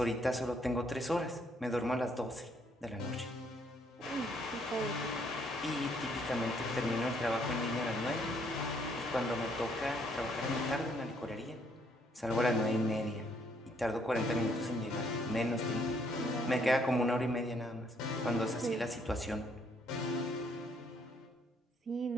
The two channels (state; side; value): normal; both; correlation 0.68